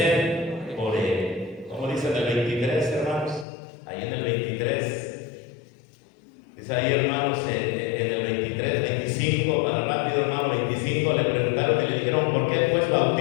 por él. ¿Cómo dice en el 23, hermanos? Ahí en el 23. Dice ahí, hermanos, en el 23, 25, para rápido, hermano, 25, le preguntaron y le dijeron, ¿por qué pues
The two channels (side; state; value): right; drops out; at 3.5 s